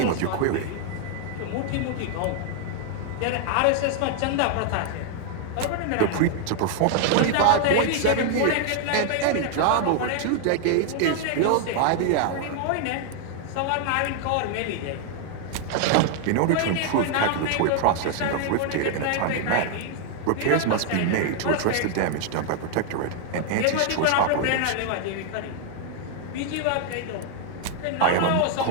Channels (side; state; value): both; different; correlation 0.00